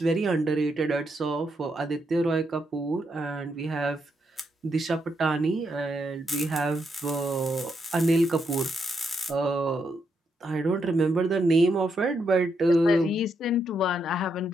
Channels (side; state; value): both; normal; correlation 0.80